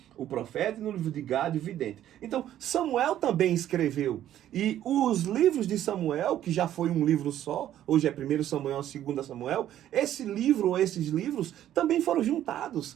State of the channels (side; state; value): left; quieter; 11.9 dB